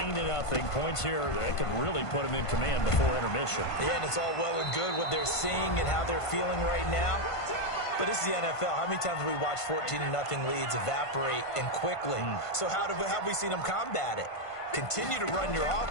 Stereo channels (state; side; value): late; right; 1.5 ms